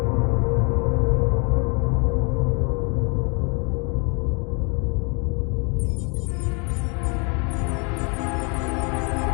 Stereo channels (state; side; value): quieter; right; 34.2 dB